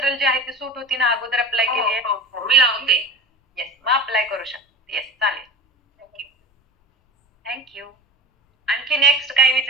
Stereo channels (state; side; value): normal; both; correlation 0.33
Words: जे आहे ते सूट होती ना अगोदर अप्लाय केली आहे मी लावते येस मग अप्लाय करू शकते येस चालेल थँक्यू आणखी नेक्स्ट काही